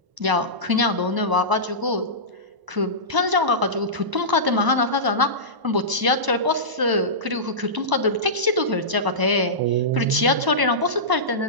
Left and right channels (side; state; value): left; late; 1.0 ms